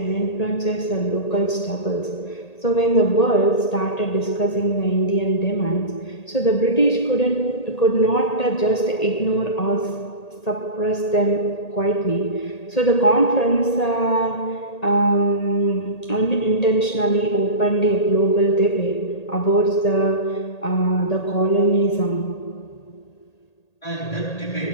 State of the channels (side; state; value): right; late; 1.8 ms